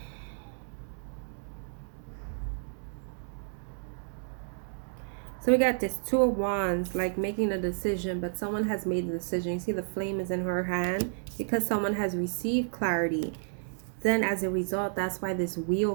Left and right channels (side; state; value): left; silent; digital silence